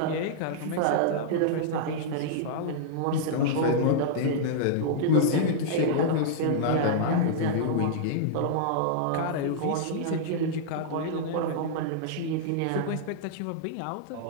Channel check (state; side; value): different; both; correlation -0.02